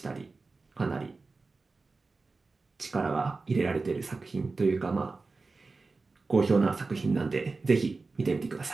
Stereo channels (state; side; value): quieter; left; 3.9 dB